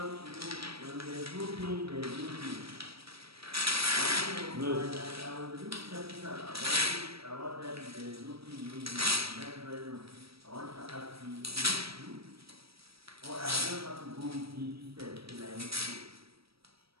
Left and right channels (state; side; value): late; left; 0.76 ms